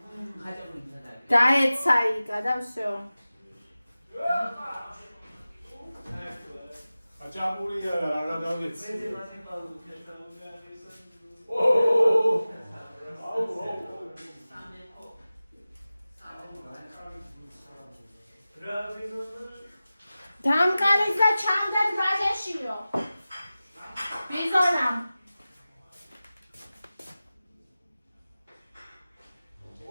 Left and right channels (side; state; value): both; inverted; correlation -0.96